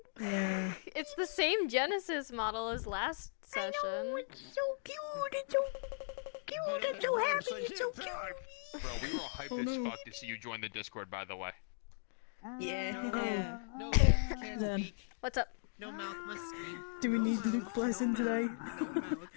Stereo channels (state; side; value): silent; right; digital silence